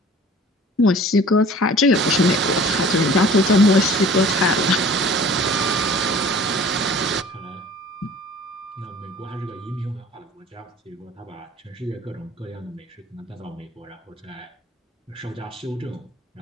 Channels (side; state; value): both; normal; correlation 0.47